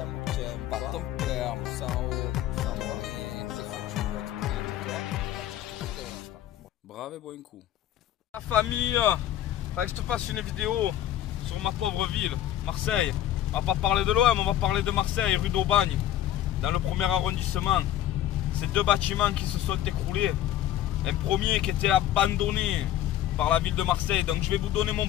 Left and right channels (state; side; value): quieter; right; 12.4 dB